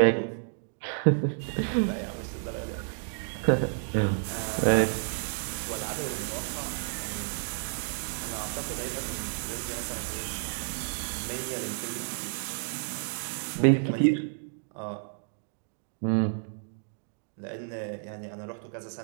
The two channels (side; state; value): left; silent; digital silence